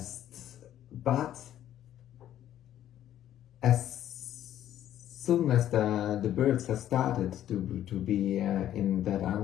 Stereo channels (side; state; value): right; quieter; 11.7 dB